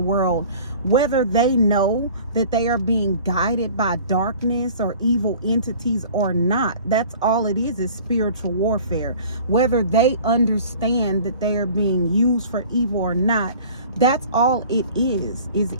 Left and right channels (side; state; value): both; inverted; correlation -0.46